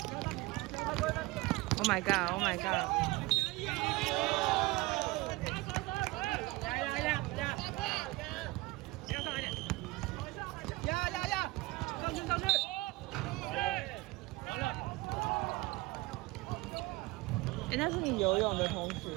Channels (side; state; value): left; quieter; 21.3 dB